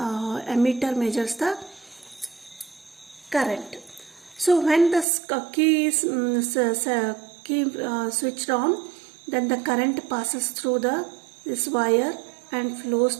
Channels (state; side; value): drops out; left; at 5.1 s